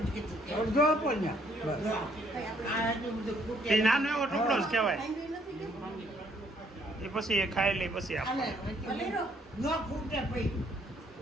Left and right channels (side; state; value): both; normal; correlation 0.66